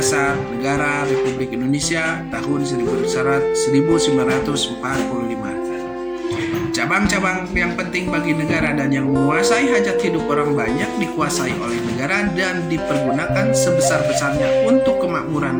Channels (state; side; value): identical; both; correlation 1.00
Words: Negara Republik Indonesia tahun 1945. Cabang-cabang yang penting bagi negara dan yang menguasai hajat hidup orang banyak dikuasai oleh negara dan dipergunakan sebesar-besarnya untuk kemakmuran